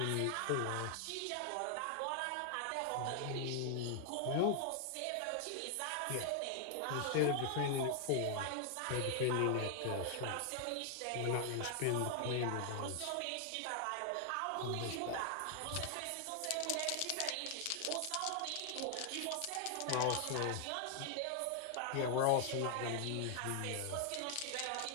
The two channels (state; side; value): different; both; correlation 0.00